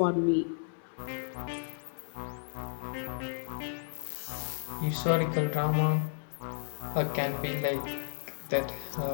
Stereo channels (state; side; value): silent; right; digital silence